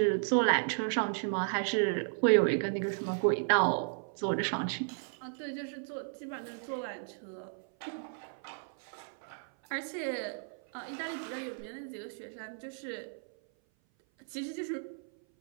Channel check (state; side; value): silent; left; 55 dB below the other